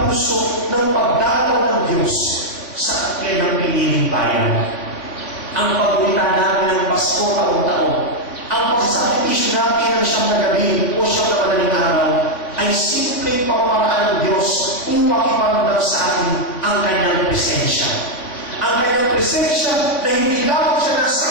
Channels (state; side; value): late; right; 3.6 ms